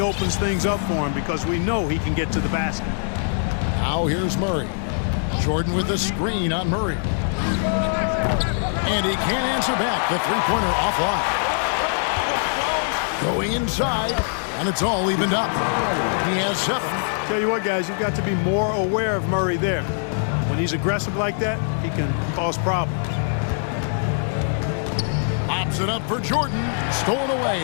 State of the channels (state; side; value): silent; right; digital silence